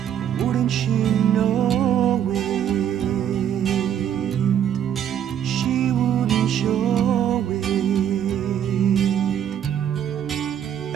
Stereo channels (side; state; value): left; quieter; 9.6 dB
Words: Wouldn't she know it? She wouldn't show it.